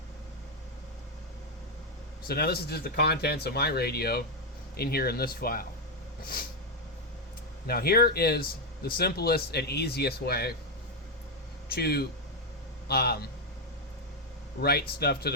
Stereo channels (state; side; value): normal; both; correlation 0.03